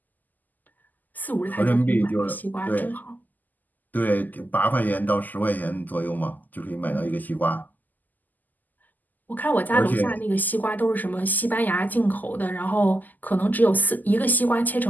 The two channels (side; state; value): right; late; 0.084 ms